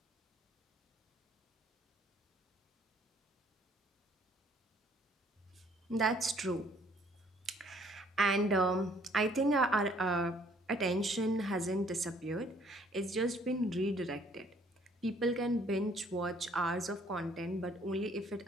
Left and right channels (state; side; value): normal; both; correlation 0.61